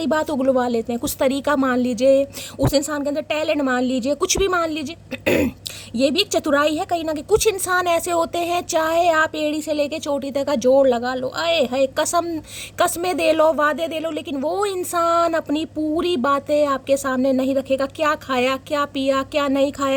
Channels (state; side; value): identical; both; correlation 1.00